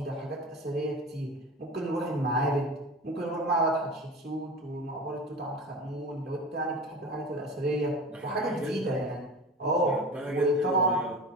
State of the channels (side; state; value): both; normal; correlation 0.33